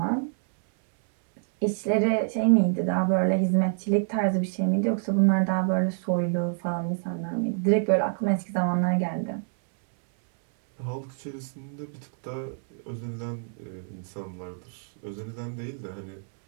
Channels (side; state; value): left; silent; 60 dB below the other